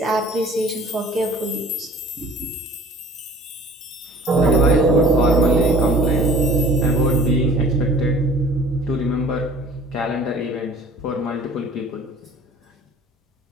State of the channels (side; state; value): both; normal; correlation 0.48